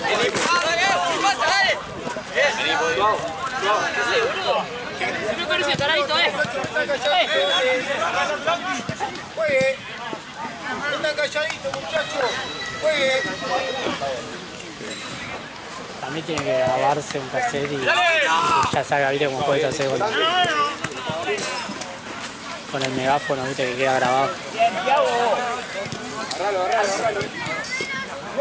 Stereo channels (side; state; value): both; identical; correlation 1.00